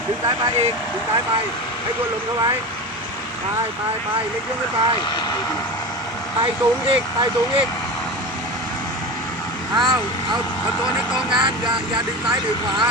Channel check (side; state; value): both; normal; correlation 0.26